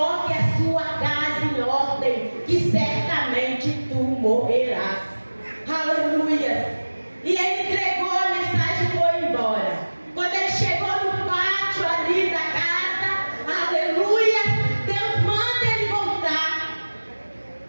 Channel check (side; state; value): both; inverted; correlation -1.00